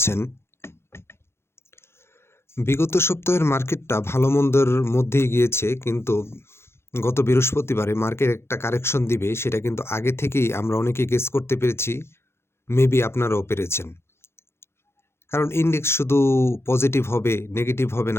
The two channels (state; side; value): late; right; 0.12 ms